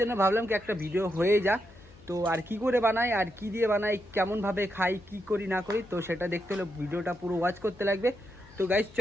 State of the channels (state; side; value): noise; left; hum, 24 dB below the sound